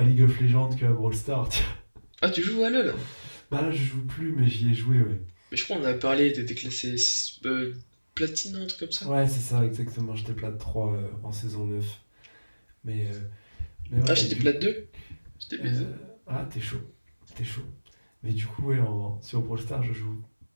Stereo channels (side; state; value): both; inverted; correlation -1.00